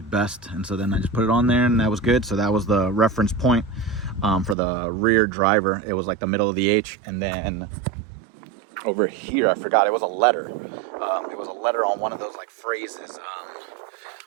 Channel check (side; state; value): left; drops out; at 4.5 s